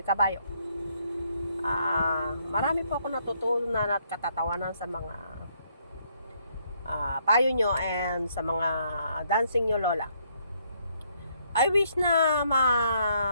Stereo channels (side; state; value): both; inverted; correlation -0.71